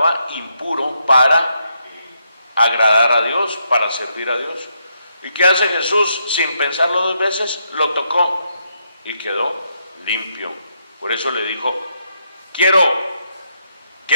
impuro para agradar a Dios, para servir a Dios. ¿Y qué hace Jesús? Sin pensarlo 2 veces, lo tocó y quedó limpio. Por eso le dijo: quiero,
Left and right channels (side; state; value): both; inverted; correlation -0.79